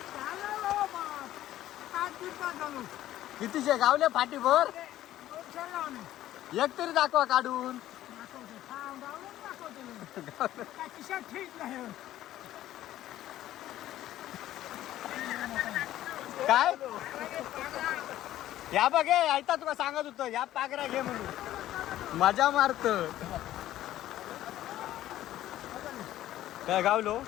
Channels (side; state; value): right; quieter; 13.6 dB